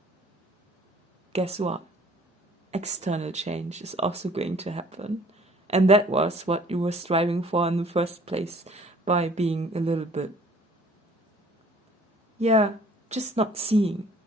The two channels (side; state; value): both; normal; correlation 0.55